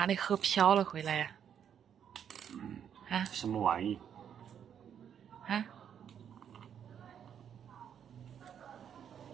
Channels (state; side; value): quieter; left; 8.6 dB